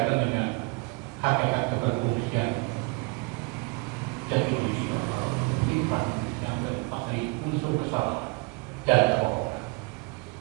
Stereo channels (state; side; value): quieter; left; 28.5 dB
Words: dengan hakikat keberfungsian jati diri sifat yang terlepas dari unsur kesalahan dan kebohongan.